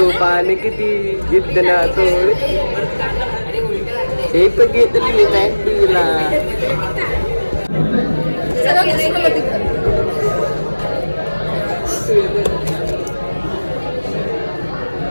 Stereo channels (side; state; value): both; inverted; correlation -1.00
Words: पाणी किती जिद्द ना सोड. हे पण घेतली नाही तुला.